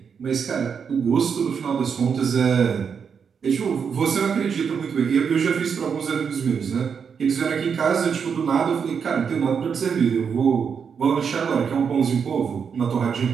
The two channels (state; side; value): quieter; left; 6.6 dB